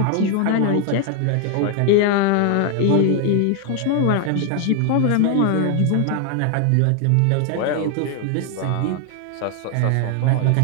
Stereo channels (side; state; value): both; different; correlation 0.00